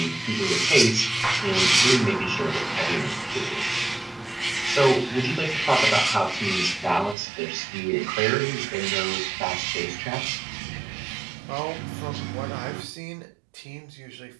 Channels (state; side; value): drops out; left; at 7.2 s